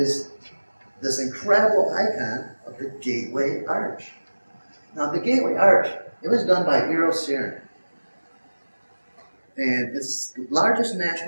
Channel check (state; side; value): inverted; both; correlation -1.00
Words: this incredible icon of the Gateway Arch. Now, the Gateway Arch, it was done by Eero Saarinen, and it's the largest